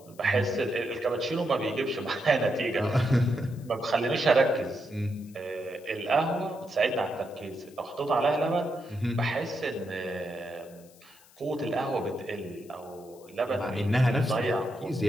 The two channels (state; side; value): noise; left; hiss, 26 dB below the sound